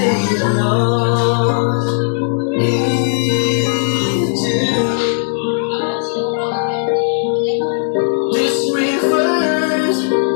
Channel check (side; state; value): right; silent; digital silence